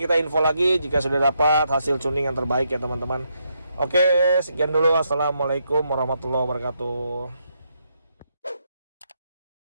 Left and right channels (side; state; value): both; inverted; correlation -0.79